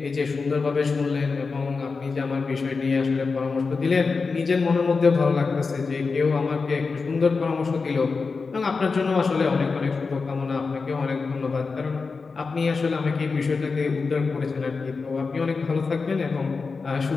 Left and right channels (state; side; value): quieter; right; 4.5 dB